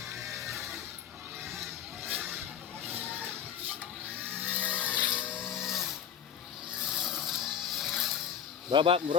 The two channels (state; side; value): quieter; right; 8.7 dB